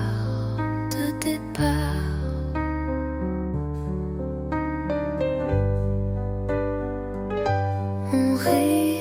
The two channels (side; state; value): both; identical; correlation 1.00